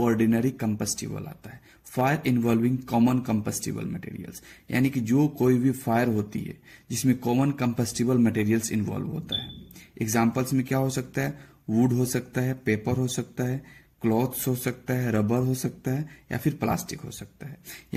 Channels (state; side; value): identical; both; correlation 1.00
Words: कंबस्टिबल आता है, fire involving common combustible materials, यानी कि जो कोई भी फायर होती है जिसमें कॉमन कंबस्टिबल मटेरियल्स इन्वॉल्व होता है। एग्जांपल्स में क्या हो सकता है, वुड हो सकता है, पेपर हो सकता है, क्लॉथ्स हो सकता है, रबर हो सकता है या फिर प्लास्टिक हो सकता है।